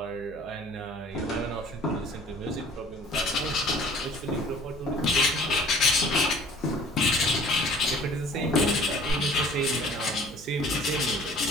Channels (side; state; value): right; noise; hum, 21 dB below the sound